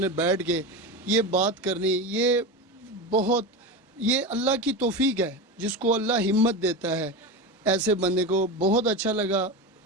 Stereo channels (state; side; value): normal; both; correlation 0.21